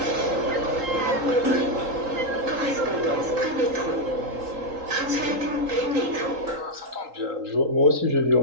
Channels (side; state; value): left; late; 3.8 ms